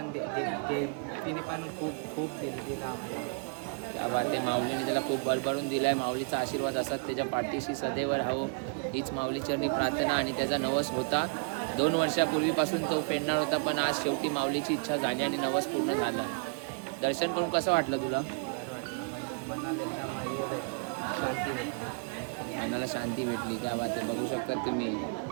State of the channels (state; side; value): quieter; left; 39.1 dB